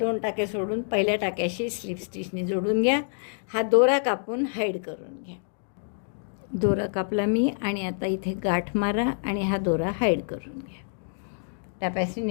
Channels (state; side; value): silent; right; digital silence